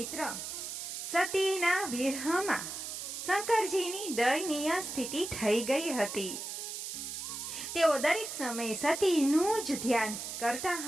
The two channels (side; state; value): right; noise; hiss, 6 dB below the sound